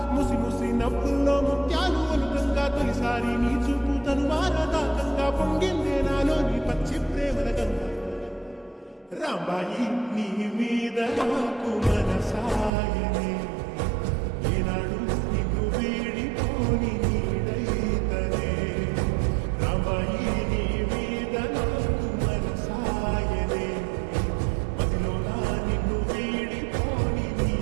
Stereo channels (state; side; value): drops out; left; at 12.7 s